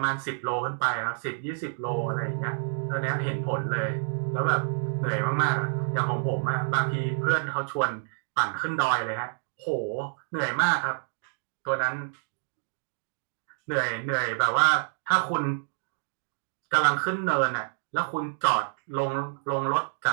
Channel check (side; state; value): left; silent; digital silence